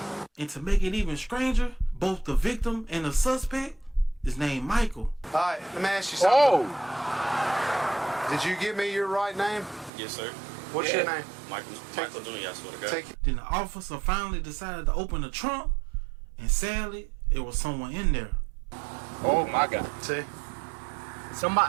And to make it even stranger, both the victim and the suspect is named Michael. All right, let me ask you something. Did you give me your right name? Yes, sir. What's your name? Michael Jr., I swear to God. Take it. Then the officer finally decided to open the trunk, and sadly, it was someone in there. Oh my God. See?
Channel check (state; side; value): drops out; left; at 9.9 s